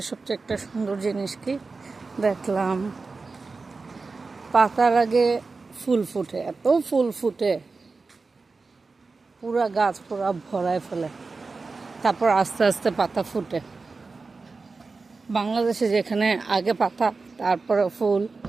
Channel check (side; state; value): left; quieter; 4.1 dB